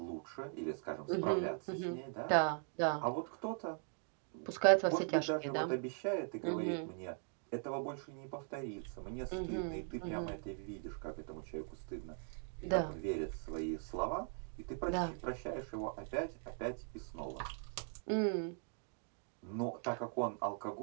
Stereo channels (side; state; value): left; silent; 51 dB below the other